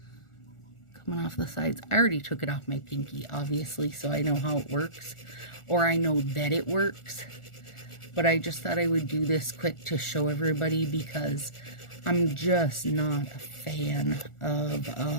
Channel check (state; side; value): late; right; 1.4 ms